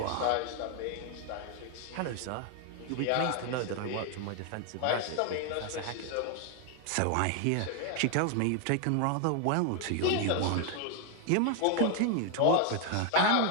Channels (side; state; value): both; different; correlation 0.00